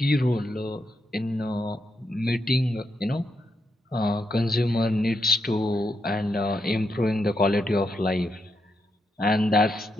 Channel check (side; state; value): both; normal; correlation 0.82